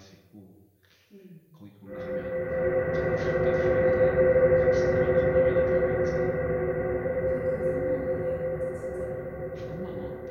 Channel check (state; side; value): identical; both; correlation 1.00